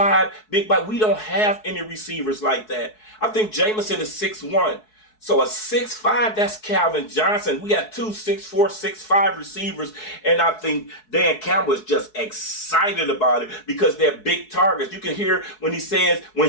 big body. We don't have any receivers like that. I think Jameson is 6'1". So a 6'5", that's Calvin Johnson. We got 2 6'4", 6'5" receivers, and I think Dan Campbell is just excited about it because they're big targets. You can hear when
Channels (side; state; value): right; late; 4.7 ms